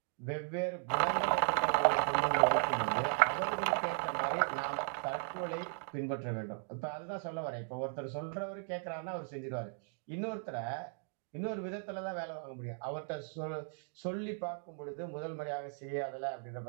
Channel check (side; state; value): left; silent; 53 dB below the other